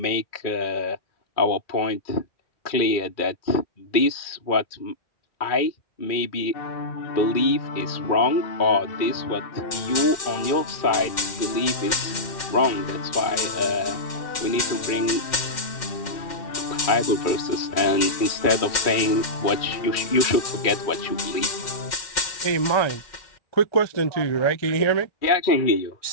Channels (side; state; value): right; late; 2.1 ms